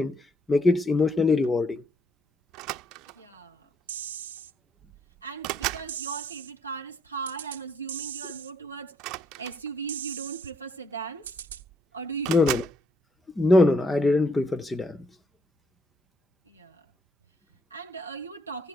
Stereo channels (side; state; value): both; normal; correlation 0.72